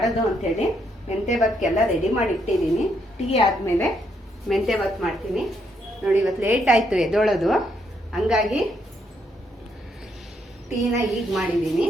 ಅಂಥೇಳಿ. ಮೆಂತೆ ಬಾತ್ಗೆಲ್ಲ ರೆಡಿ ಮಾಡಿ ಇಟ್ಟಿದ್ದೀನಿ. ಟೀ ಆದಮೇಲೆ ಮೆಂತೆ ಬಾತ್ ಮಾಡ್ತೀನಿ. ನೋಡಿ, ಇವತ್ತು ಲೇಟ್ ಆಯಿತು ಎದ್ದೋಳೋದು, ಹಂಗಾಗಿ ಟೀನ ಈಗ ಮಾಡಿದ್ದೀನಿ.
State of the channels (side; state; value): both; normal; correlation 0.75